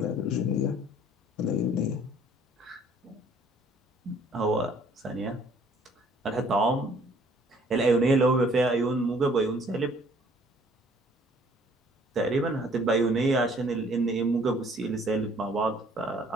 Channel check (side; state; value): both; normal; correlation 0.59